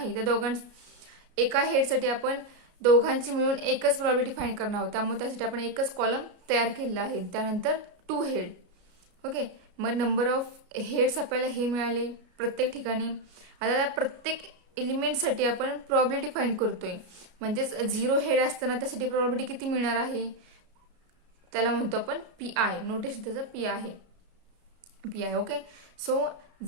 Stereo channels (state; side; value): late; left; 33 ms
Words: त्या एका हेडसाठी आपण दोघांची मिळून एकच प्रोबॅबिलिटी फाइंड करणार आहोत, त्यामुळे त्यासाठी आपण एकच कॉलम तयार केलेला आहे. त्यानंतर 2 हेड. ओके, मग नंबर ऑफ हेड्स आपल्याला हे मिळाले प्रत्येक ठिकाणी. आता प्रत्येक एलिमेंटसाठी आपण प्रोबॅबिलिटी फाइंड करतोय, म्हणजेच 0 हेड असताना त्यासाठी प्रोबॅबिलिटी किती मिळणार आहे, त्याला म्हणतो आपण PI. नोटेशन त्याचं PI आहे, PI. ओके, सो